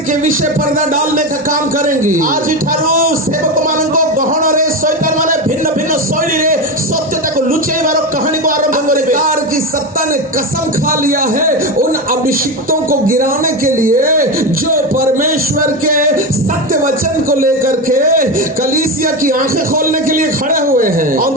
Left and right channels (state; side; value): normal; both; correlation 0.17